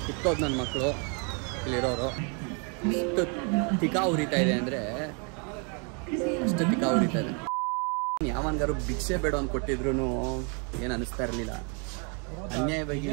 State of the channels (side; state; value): left; quieter; 36.9 dB